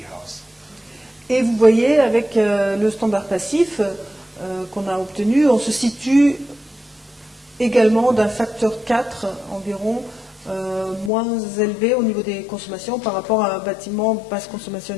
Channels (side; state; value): right; drops out; at 11.1 s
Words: Et vous voyez, avec le standard passif qu'on a obtenu, on se situe également d'un facteur 4 environ moins élevé au niveau des consommations par rapport à un bâtiment basse consommation